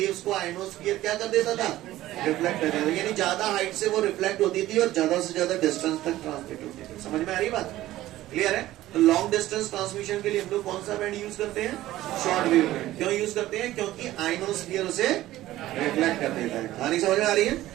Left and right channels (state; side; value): quieter; left; 15.3 dB